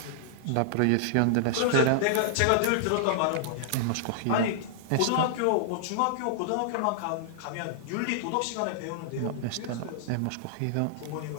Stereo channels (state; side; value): different; both; correlation -0.01